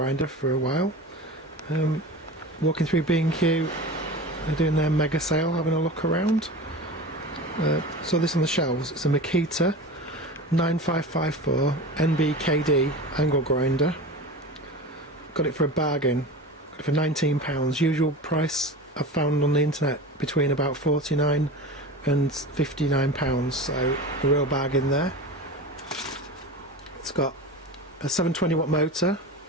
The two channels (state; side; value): normal; both; correlation 0.31